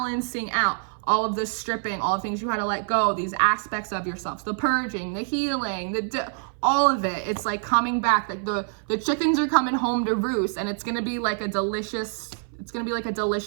out all of the stripping, all the things you had to let go, these aspects of yourself, the purging, the healing, all of it. It's like coming back, like the chickens are coming home to roost, and it's gonna be like a delicious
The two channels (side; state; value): left; silent; 57 dB below the other